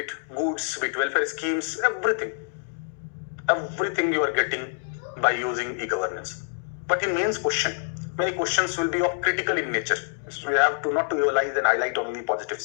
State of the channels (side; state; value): right; silent; digital silence